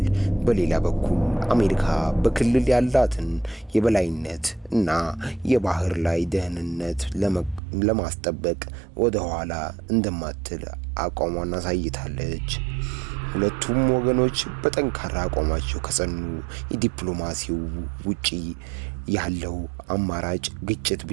በሌላ በኩል አሜሪካ በክልል ያላትን የበላይነት እና የባህር ላይ ደህንነት ለማስጠበቅ ወደ ኋላ እንደማትል አቋሟን አሳይታለች። ሁለቱም ወገኖች በጠንካራ አቋማቸው ከጸኑ የዲፕሎማሲው ውጪ ያለው አማራጭ ግጭት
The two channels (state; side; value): drops out; left; at 7.6 s